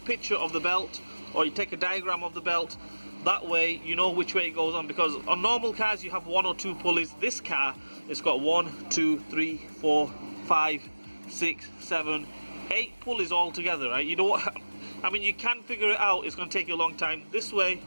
of the belt, or you take a diagram of the belt. That way you know which way it goes on, because on normal cars you have 1 or 2 pulleys. This car, it's got 1, 2, 3, 4, 5, 6, 7, 8 pulleys all together, right? You know what? I mean, you can figure it out. It's going to take you a long time. This way,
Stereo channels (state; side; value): inverted; both; correlation -1.00